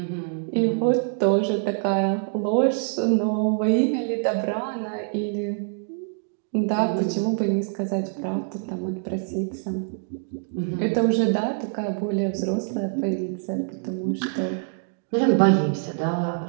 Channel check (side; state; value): left; silent; digital silence